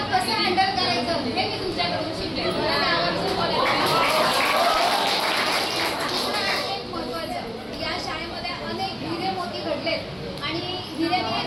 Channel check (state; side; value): identical; both; correlation 1.00